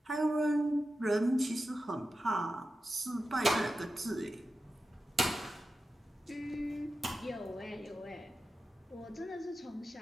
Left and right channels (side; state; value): both; normal; correlation 0.92